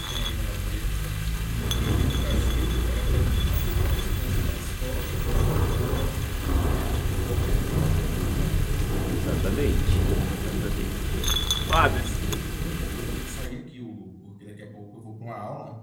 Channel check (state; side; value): identical; both; correlation 1.00